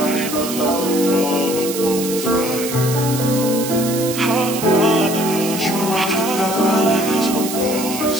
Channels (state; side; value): noise; right; hiss, 7 dB below the sound